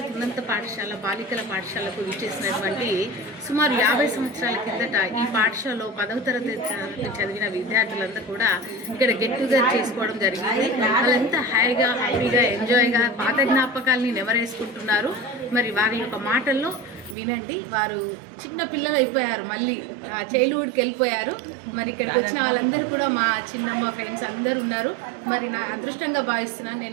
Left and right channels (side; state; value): left; drops out; at 17.2 s